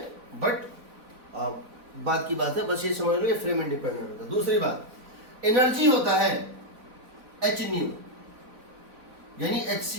बट बात की बात है, बस ये समझ लो ये फ्रेम इंडिपेंडेंट होता है। दूसरी बात, एनर्जी होता है h न्यू, यानी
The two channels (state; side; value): late; left; 4.0 ms